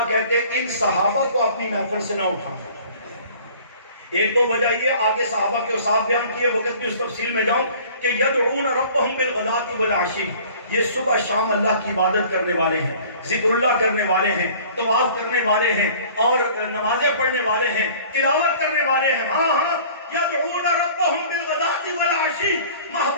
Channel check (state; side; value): inverted; both; correlation -0.49